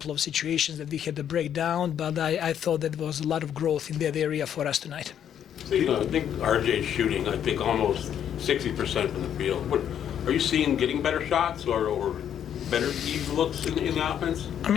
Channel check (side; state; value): right; quieter; 9.4 dB